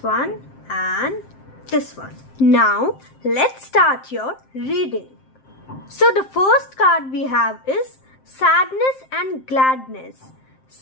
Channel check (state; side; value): late; right; 7.6 ms